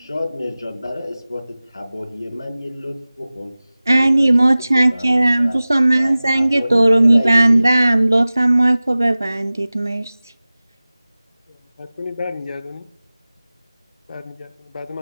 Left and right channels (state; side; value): inverted; both; correlation -0.98